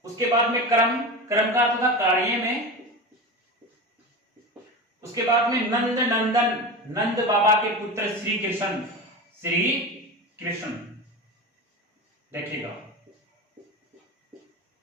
उसके बाद में कर्म, कर्म का अर्थ था कार्य में, उसके बाद में नंद नंदन, नंद बाबा के पुत्र श्री कृष्ण, श्री कृष्ण। देखिएगा,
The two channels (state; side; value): normal; both; correlation 0.26